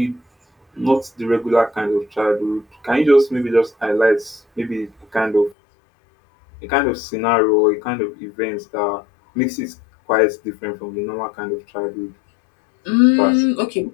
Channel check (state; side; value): drops out; right; at 5.6 s